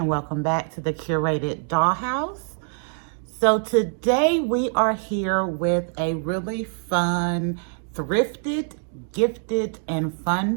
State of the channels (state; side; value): silent; left; 62 dB below the other